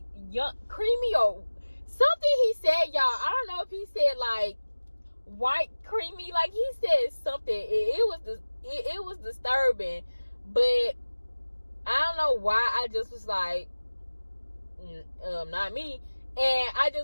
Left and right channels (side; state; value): both; inverted; correlation -1.00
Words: young, creamy, or something he said, y'all. I don't know if he said like white creamy, like he said something. It was disturbing, but I don't know why. I just was like, not me. And I